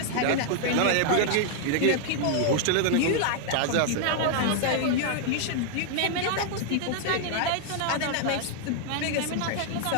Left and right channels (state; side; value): different; both; correlation 0.00